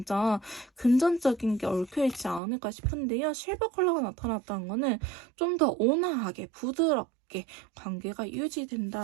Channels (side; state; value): left; drops out; at 2.4 s